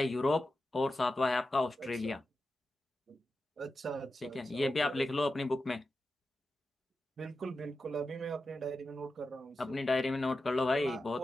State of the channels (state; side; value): normal; both; correlation 0.91